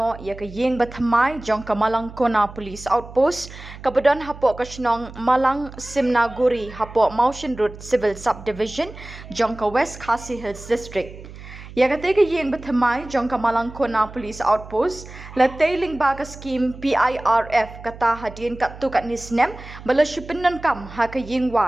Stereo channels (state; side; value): noise; right; hum, 15 dB below the sound